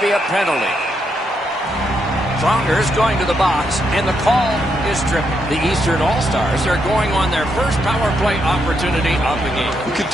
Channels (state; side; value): normal; both; correlation 0.79